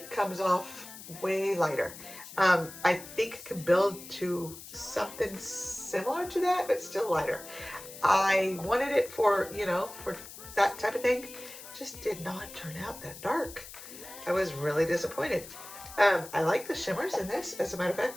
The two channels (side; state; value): left; noise; hiss, 14 dB below the sound